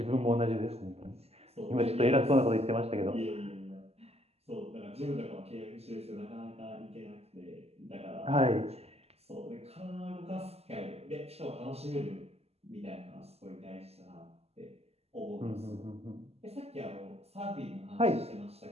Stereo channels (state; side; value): late; left; 0.29 ms